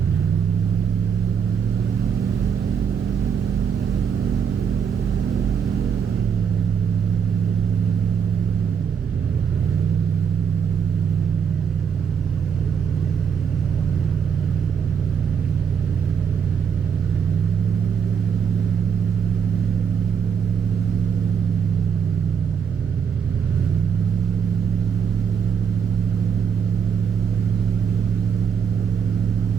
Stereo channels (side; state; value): left; quieter; 7.1 dB